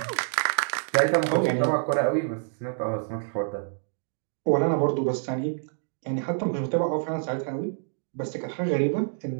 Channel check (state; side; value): silent; left; digital silence